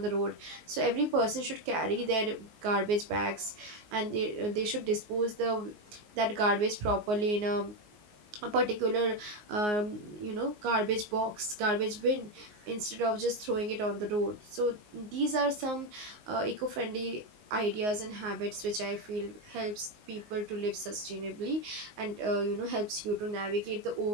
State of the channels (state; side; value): late; left; 19 ms